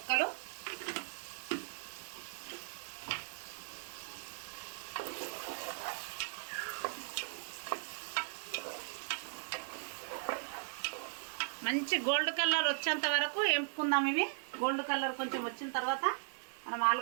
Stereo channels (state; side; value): silent; left; digital silence